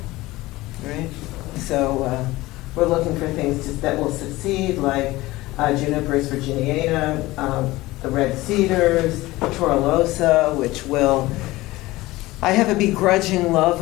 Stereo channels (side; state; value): right; quieter; 19.0 dB